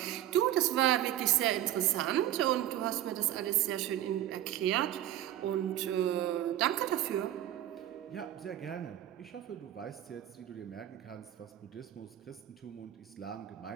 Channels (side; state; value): left; quieter; 12.6 dB